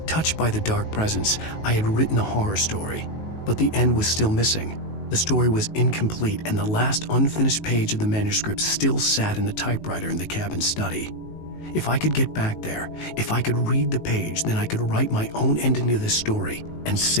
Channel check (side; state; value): right; late; 19 ms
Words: Touched by the dark presence, I had written a horror story, but the end was still missing. The story was incomplete, and the last unfinished page of the manuscript still sat in the typewriter in the cabin study. If I could get back there, if I could read the page, then I could write my own ending to this story and